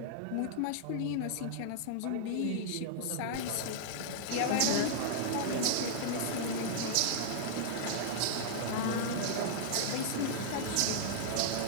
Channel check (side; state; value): both; different; correlation -0.01